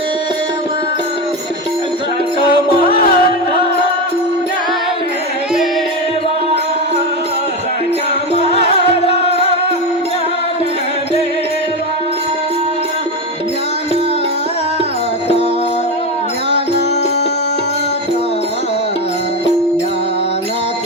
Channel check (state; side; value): normal; both; correlation 0.15